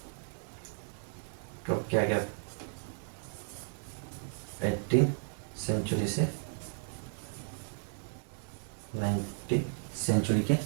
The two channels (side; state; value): left; silent; digital silence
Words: कब किया गया, 18th सेंचुरी से 19th सेंचुरी के